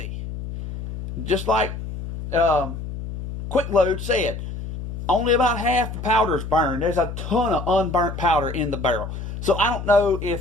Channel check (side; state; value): left; noise; hum, 8 dB below the sound